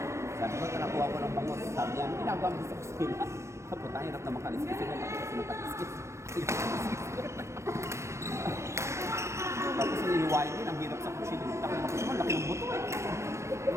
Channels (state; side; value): late; left; 0.13 ms